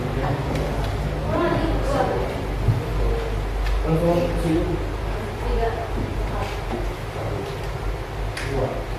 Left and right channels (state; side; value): identical; both; correlation 1.00